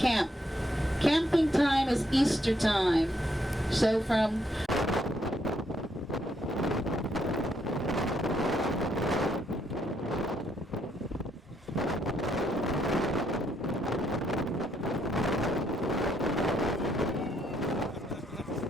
Camping time is Easter time. So from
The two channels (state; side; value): normal; both; correlation 0.74